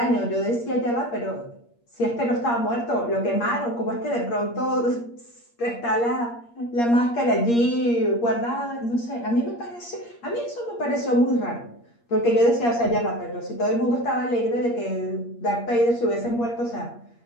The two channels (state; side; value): late; right; 8.5 ms